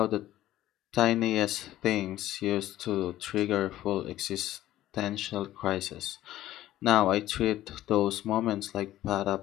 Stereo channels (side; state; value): right; quieter; 14.1 dB